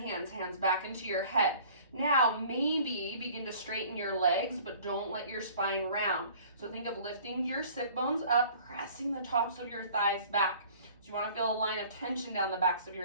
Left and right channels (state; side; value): inverted; both; correlation -0.50